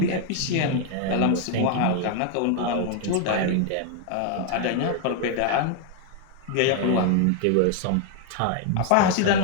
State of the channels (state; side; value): different; both; correlation 0.00